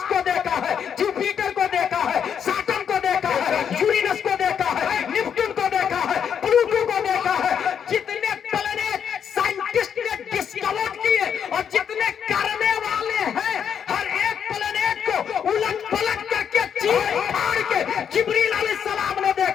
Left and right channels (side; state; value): right; quieter; 7.9 dB